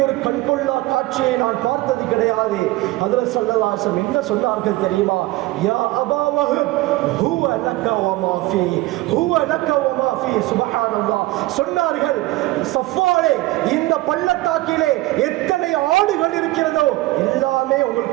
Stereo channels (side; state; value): left; quieter; 18.9 dB